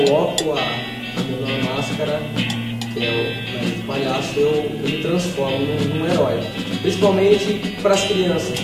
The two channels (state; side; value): identical; both; correlation 1.00